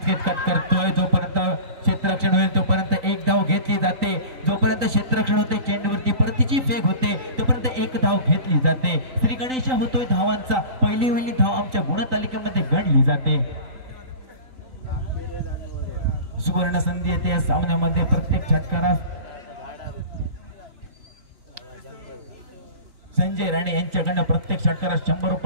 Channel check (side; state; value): left; late; 3.9 ms